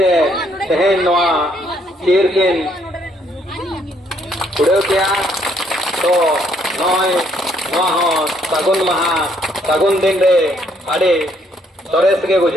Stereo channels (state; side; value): normal; both; correlation 0.68